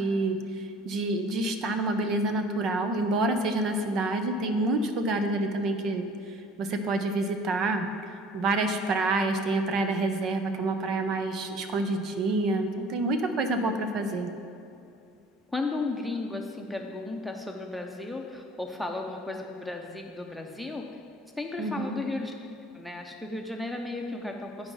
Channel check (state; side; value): normal; both; correlation 0.50